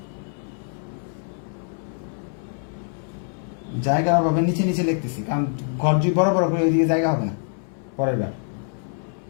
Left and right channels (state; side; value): silent; right; 62 dB below the other